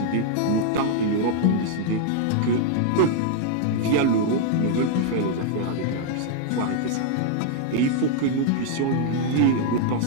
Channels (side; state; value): both; different; correlation 0.00